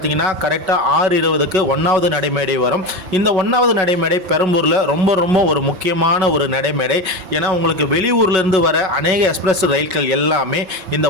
கரெக்டாக 6:20க்கு 1வது நடைமேடை வரும். இந்த 1வது நடைமேடை பெரம்பூரில் ரொம்ப ஒரு முக்கியமான ஒரு நடைமேடை. ஏன்னா உங்களுக்கு வெளியூர்ல இருந்து வர அநேக எக்ஸ்பிரஸ் ரயில்கள் எல்லாமே இந்த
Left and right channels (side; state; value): left; late; 5.4 ms